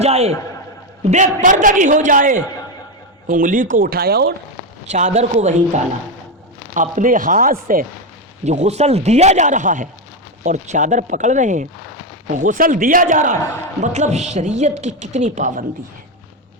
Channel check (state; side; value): normal; both; correlation 0.09